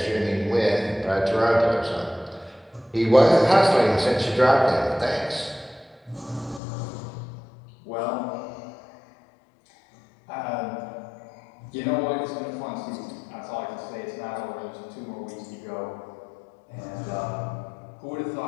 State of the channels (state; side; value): drops out; right; at 6.6 s